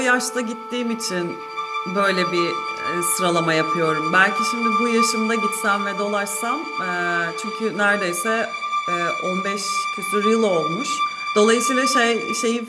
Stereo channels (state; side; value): identical; both; correlation 1.00